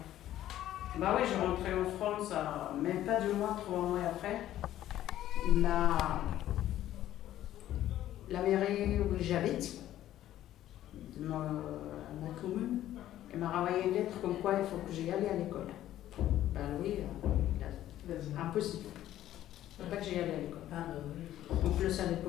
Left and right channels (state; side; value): quieter; right; 12.9 dB